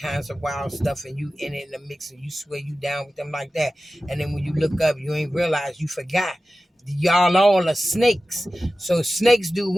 of wild stuff and you in it in the mix and you swear you down with them like that. And then when you look up, you ain't realize you forgot. Y'all all are snakes. So snakes do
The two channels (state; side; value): normal; both; correlation 0.95